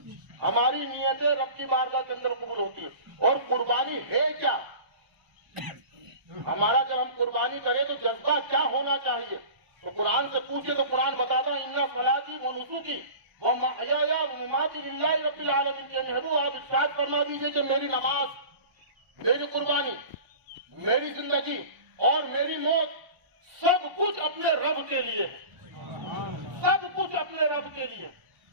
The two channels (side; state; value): left; late; 1.0 ms